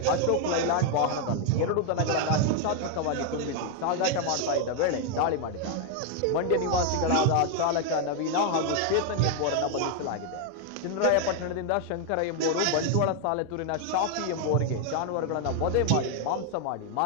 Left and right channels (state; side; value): different; both; correlation 0.00